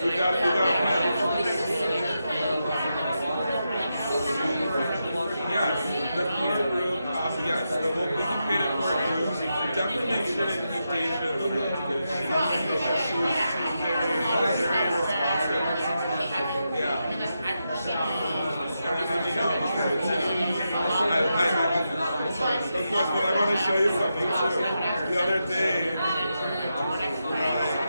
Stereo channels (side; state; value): both; inverted; correlation -0.86